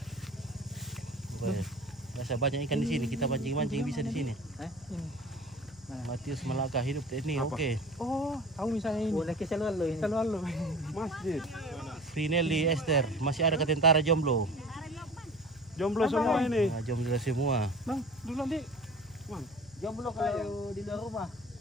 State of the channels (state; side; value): noise; right; hum, 27 dB below the sound